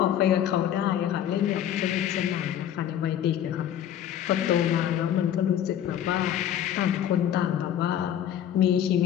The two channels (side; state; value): right; quieter; 10.4 dB